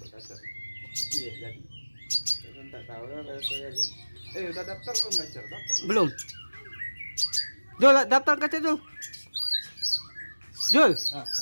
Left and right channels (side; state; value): both; inverted; correlation -1.00